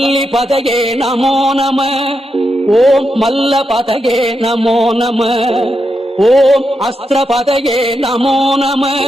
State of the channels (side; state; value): both; normal; correlation 0.85